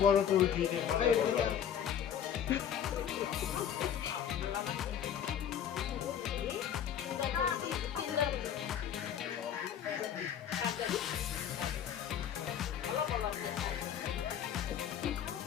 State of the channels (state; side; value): quieter; right; 9.1 dB